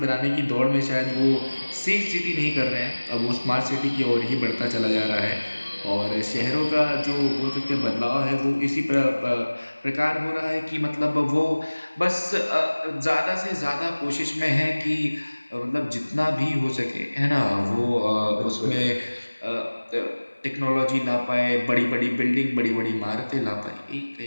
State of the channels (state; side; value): inverted; both; correlation -1.00